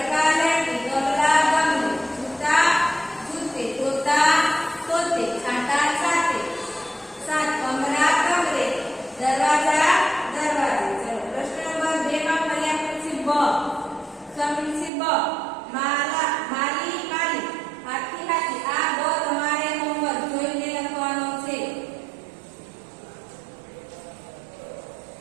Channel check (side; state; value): left; drops out; at 14.9 s